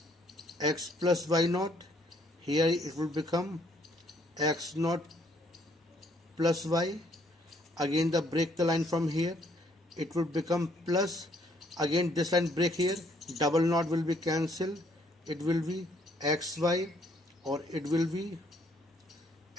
x plus y naught, here it will become x naught plus y, again the break the line from here, it will become plus, again this line break here, double naught will be cancelled, it will be xy or it will be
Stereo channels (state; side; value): normal; both; correlation 0.66